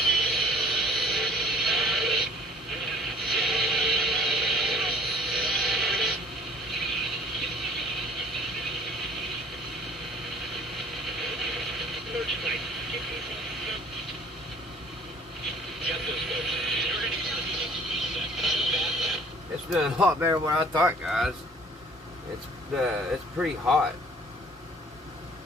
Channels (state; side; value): normal; both; correlation 0.54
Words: It's doing a lot better than what I thought, guys. It's pretty hot.